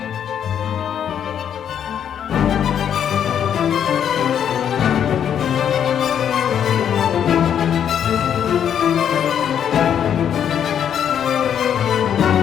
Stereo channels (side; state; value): right; quieter; 8.9 dB